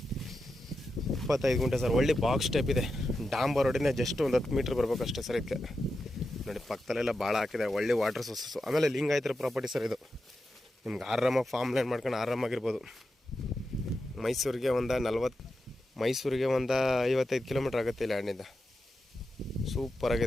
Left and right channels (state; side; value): normal; both; correlation 0.89